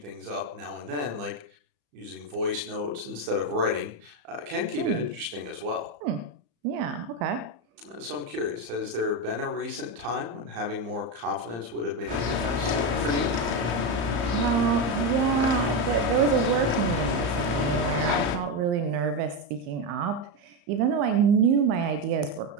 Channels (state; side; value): late; left; 34 ms